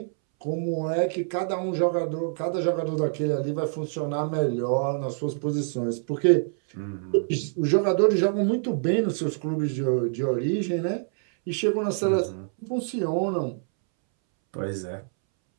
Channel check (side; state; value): left; silent; 61 dB below the other